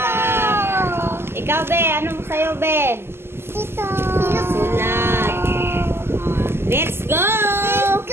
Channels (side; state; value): left; late; 0.12 ms